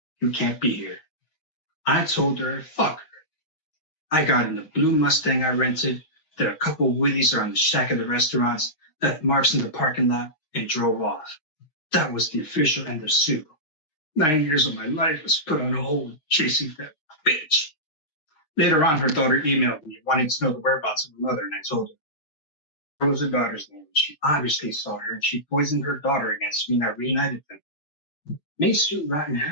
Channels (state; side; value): late; right; 6.6 ms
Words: You can't be here. I told her, fuck her. I got in the blue Mustang I rented, did a couple wheelies around the shack of the restaurants, left marks in the parking lot, and drove off. That was the official end of Sue. 9 years of my life was put on hold chasing that bitch. Later on, her daughter emailed me wanting to know the whereabouts of her mother, and I told her. What was her daughter's name? She obviously saw her, and she poisoned her daughter against me, and I reunited them. May Sue rot in